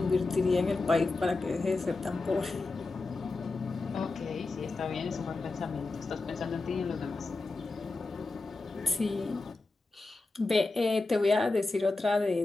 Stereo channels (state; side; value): quieter; right; 3.4 dB